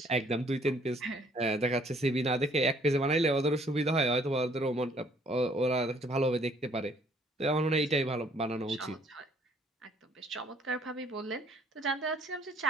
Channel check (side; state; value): both; normal; correlation 0.62